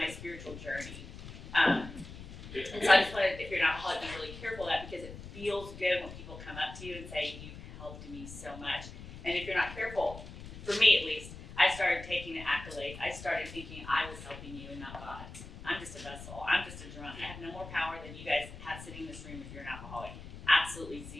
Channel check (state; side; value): noise; left; rumble, 13 dB below the sound